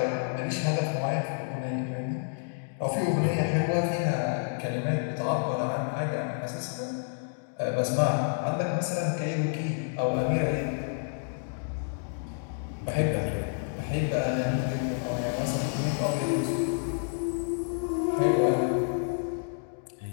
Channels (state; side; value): silent; right; digital silence